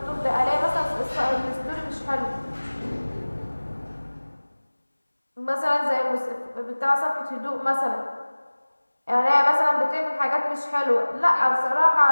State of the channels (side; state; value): both; inverted; correlation -1.00